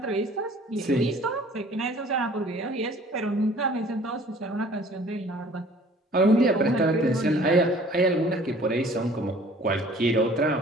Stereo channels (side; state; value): both; normal; correlation 0.52